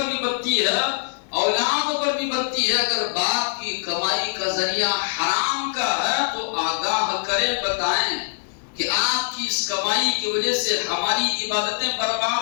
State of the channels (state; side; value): silent; right; digital silence